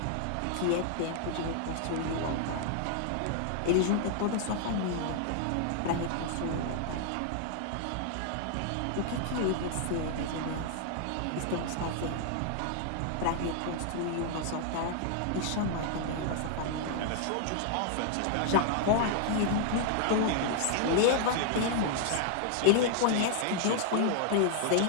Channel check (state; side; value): different; both; correlation 0.00